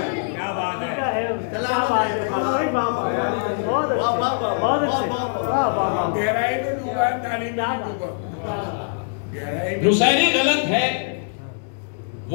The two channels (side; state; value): right; silent; digital silence